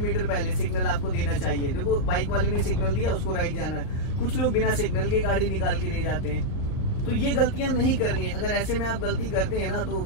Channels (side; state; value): right; late; 38 ms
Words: पहले सिग्नल आपको देना चाहिए। देखो बाइक वाले ने सिग्नल दिया, उसको राइट जाना है। कुछ लोग बिना सिग्नल के गाड़ी निकाल के ले जाते हैं, तो ये गलतियां नहीं करनी है। अगर ऐसे में आप गलती करते हैं ना तो